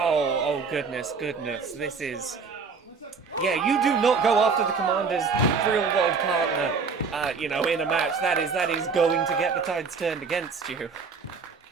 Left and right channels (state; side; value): quieter; left; 5.1 dB